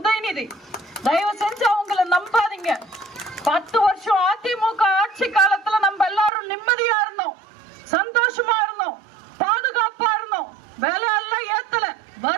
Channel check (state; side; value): drops out; left; at 6.3 s